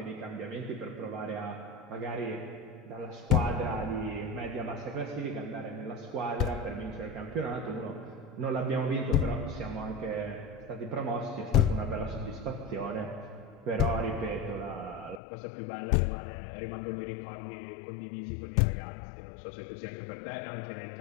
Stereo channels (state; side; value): drops out; right; at 15.2 s